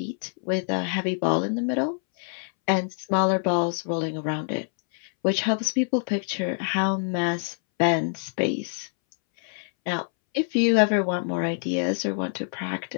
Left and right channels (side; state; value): right; silent; 61 dB below the other